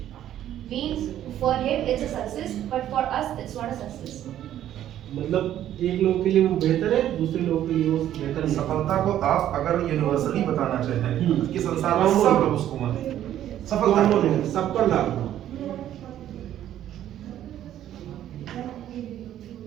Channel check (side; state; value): left; quieter; 11.7 dB